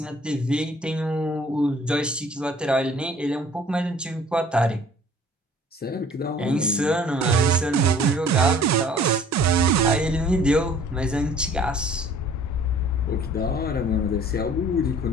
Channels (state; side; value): normal; both; correlation 0.53